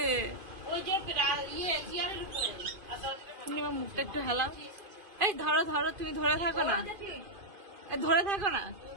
ওই যে তুমি আমার মুখটা একটু হেলাও। এই ধরো ধরো, তুমি ধরে থাকো না, ধরে থাকো না,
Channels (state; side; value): late; left; 2.5 ms